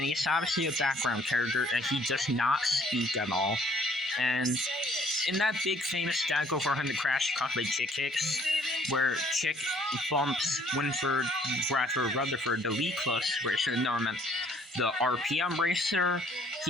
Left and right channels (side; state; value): both; normal; correlation 0.60